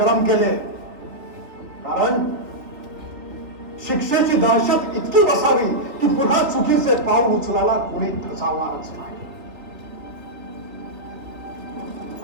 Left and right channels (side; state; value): left; late; 3.5 ms